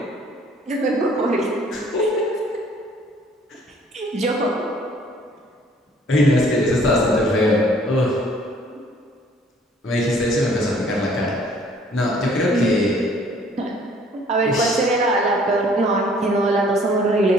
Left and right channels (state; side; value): normal; both; correlation 0.58